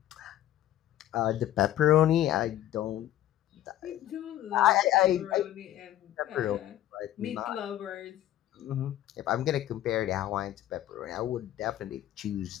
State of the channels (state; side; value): quieter; right; 13.0 dB